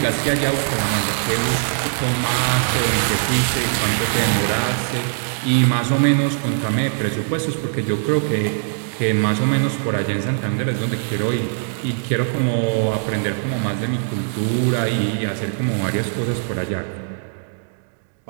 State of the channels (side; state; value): left; silent; digital silence